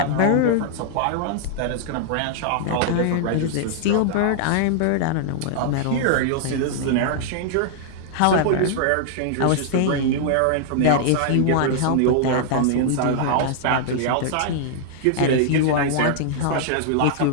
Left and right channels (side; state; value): both; different; correlation -0.01